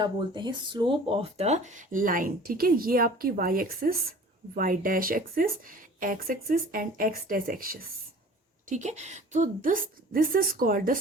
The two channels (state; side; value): normal; both; correlation 0.45